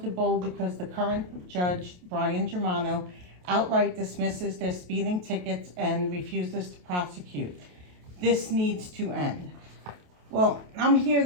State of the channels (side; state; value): left; late; 28 ms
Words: because the current judge, Brian Germano, outright dismisses their speeding tickets and refuses to prosecute. This needs to end. Well, I'm here